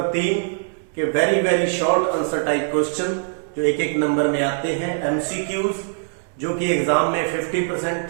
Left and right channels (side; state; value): left; silent; 64 dB below the other